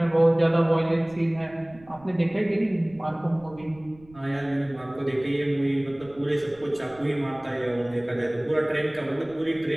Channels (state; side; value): noise; right; rumble, 24 dB below the sound